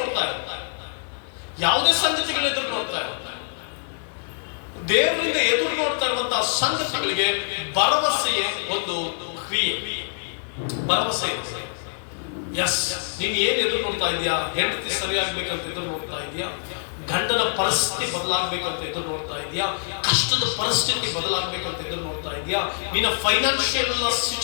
ಇಲ್ಲ, ಯಾವುದೇ ಸಂಗತಿಗಳ ಎದುರು ನೋಡ್ತಾ ಇಲ್ಲ, ದೇವರಿಂದ ಎದುರು ನೋಡ್ತಾ ಇರುವಂತಹ ಸಂಗತಿಗಳಿಗೆ ಭರವಸೆಯೇ ಒಂದು ಕ್ರಿಯೆ, ಭರವಸೆ. ಎಸ್, ನೀನ್ ಏನ್ ಎದುರು ನೋಡ್ತಾ ಇದೀಯಾ? ಹೆಂಡತಿ ಸರಿಯಾಗ್ಬೇಕಂತ ಎದುರು ನೋಡ್ತಾ ಇದೀಯಾ? ಗಂಡನ ಪರಿಸ್ಥಿತಿ ಬದಲಾಗ್ಬೇಕಂತ ಎದುರು ನೋಡ್ತಾ ಇದೀಯಾ? ಕಷ್ಟದ ಪರಿಸ್ಥಿತಿ ಬದಲಾಗ್ಬೇಕಂತ ಎದುರು ನೋಡ್ತಾ ಇದೀಯಾ? ನಿನ್ನ ಫೈನಾನ್ಷಿಯಲ್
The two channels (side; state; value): right; silent; 62 dB below the other